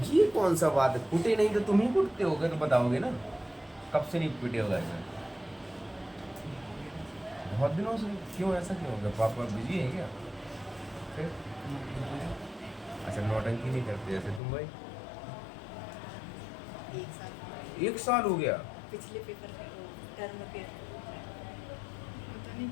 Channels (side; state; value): right; drops out; at 14.4 s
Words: ये कौन सा बात है, कुटे नहीं तो तुम ही कुटते होगे तो बताओगे ना, कब से नहीं पिटे होगा ऐसा? बहुत दिनों से? क्यों ऐसा क्यों हो गया? पापा बिजी है क्या? फिर अच्छा नौटंकी नहीं करते जैसे तुम भाई? 1 साल हो गया? पिछले पेपर टर्म के पता नहीं